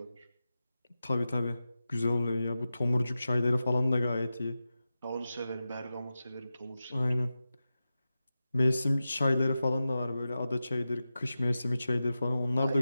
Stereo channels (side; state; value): both; inverted; correlation -0.93